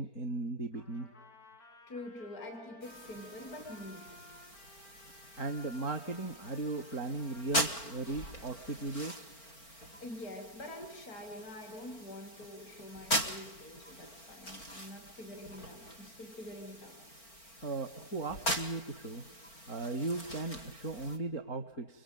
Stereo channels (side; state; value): right; late; 4.4 ms